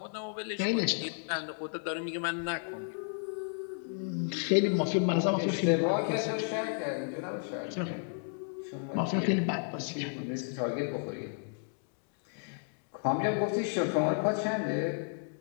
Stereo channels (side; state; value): right; silent; 56 dB below the other